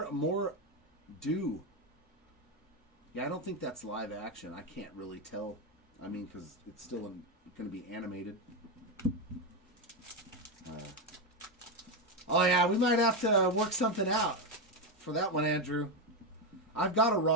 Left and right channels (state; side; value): normal; both; correlation 0.09